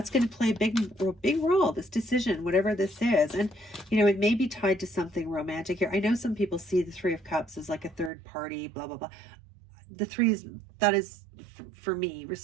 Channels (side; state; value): left; drops out; at 8.1 s